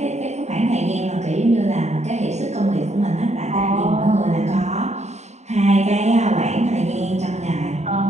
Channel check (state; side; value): late; left; 0.33 ms